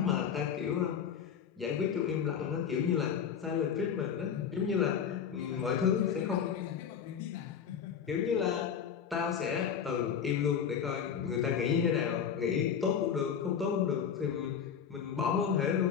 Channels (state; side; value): quieter; right; 7.7 dB